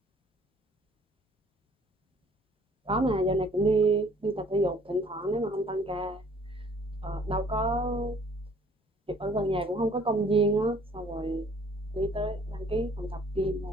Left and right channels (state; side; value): normal; both; correlation 0.57